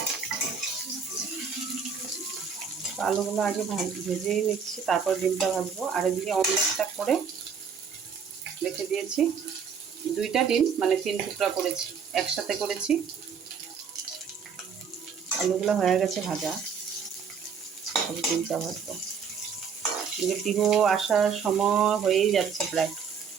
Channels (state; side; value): quieter; left; 6.5 dB